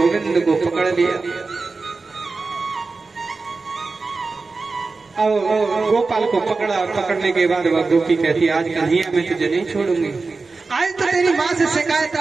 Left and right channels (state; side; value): quieter; left; 4.0 dB